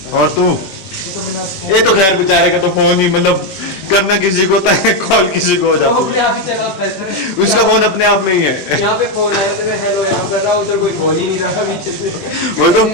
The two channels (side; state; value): right; late; 21 ms